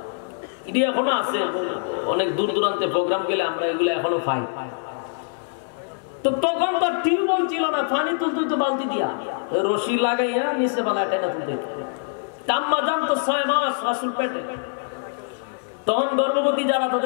এটি এখনো আছে, অনেক দূর দূরান্তে প্রোগ্রাম গেলে আমরা এগুলো এখনো পাই। তো তখন তো টিউবওয়েল ছিল না, পানি তুলতে তো বালতি দিয়া রশি লাগাইয়া নিচে বেলা টেনে তুলতে। আম্মা জান তো 6 মাস রাসূল পেটে, তখন গর্ভবতী যারা,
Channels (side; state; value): right; silent; 63 dB below the other